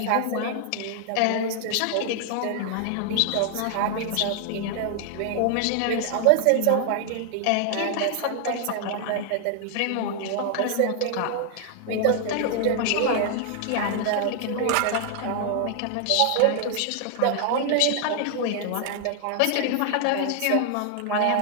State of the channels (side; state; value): both; different; correlation 0.00